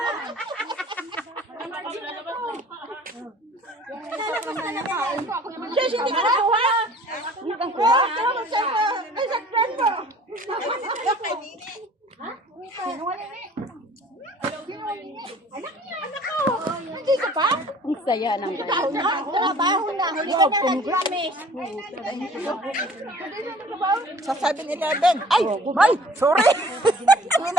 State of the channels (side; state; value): both; normal; correlation 0.50